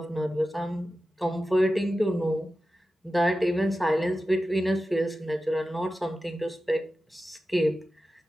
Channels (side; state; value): both; normal; correlation 0.93